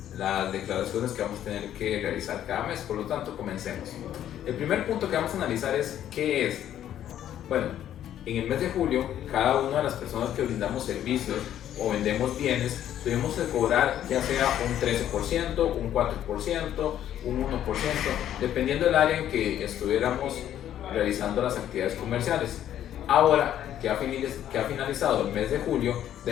las declaraciones que vamos a tener que realizar cada mes. Por lo tanto, comencemos. El primer punto que vamos a analizar es ¿qué es? Bueno, en el mes de julio, cada una de las personas que brindamos servicios o vendemos bienes, tuvimos que cobrar ya sea un 13%, un 4%, un 1%, dependiendo del área en que estuviéramos realizando las actividades comerciales. Ahora que ha finalizado el mes de julio,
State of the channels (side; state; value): right; quieter; 11.1 dB